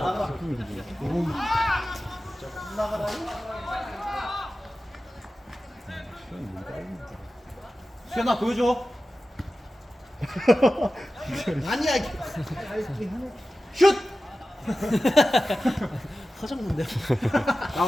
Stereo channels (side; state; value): both; normal; correlation 0.95